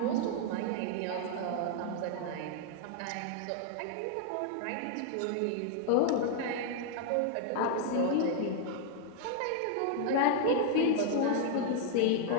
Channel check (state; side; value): different; both; correlation 0.00